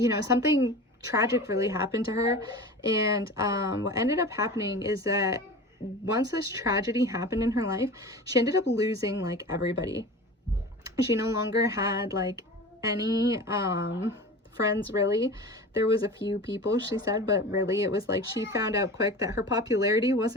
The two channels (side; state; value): both; normal; correlation 0.34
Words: something tragic really happened to her. And what ended up happening is that once this tragedy happened in her life, she ended up losing like everybody. She no longer had like any friends, really. There was a few people, she said, but really it was like she found out quick that her popularity